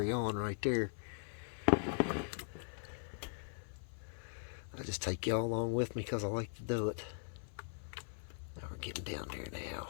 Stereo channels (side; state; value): right; silent; 51 dB below the other